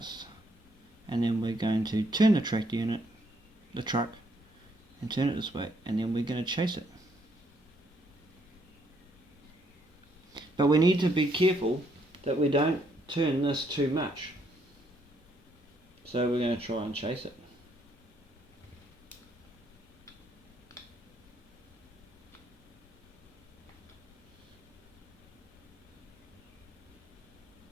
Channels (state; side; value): normal; both; correlation 0.71